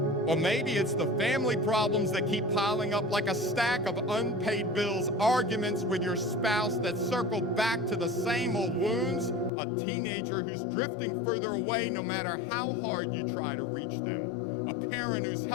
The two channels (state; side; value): drops out; right; at 9.5 s